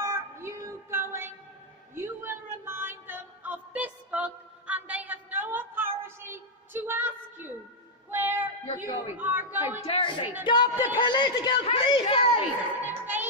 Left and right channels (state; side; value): normal; both; correlation -0.03